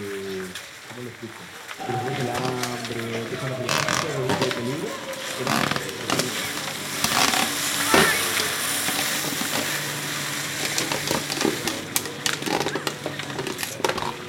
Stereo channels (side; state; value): both; identical; correlation 1.00